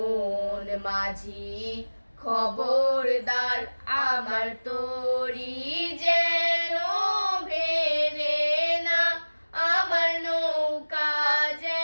মাঝি খবরদার আমার তরি যেন ভেলে না, আমার নৌকা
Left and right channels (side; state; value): both; inverted; correlation -1.00